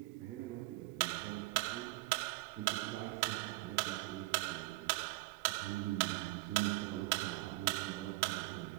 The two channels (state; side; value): quieter; left; 21.5 dB